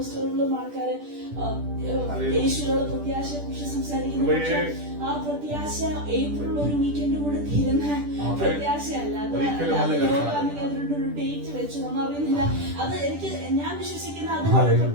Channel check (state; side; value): late; left; 10 ms